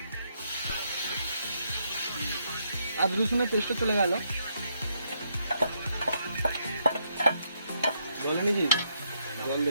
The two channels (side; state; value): both; inverted; correlation -0.76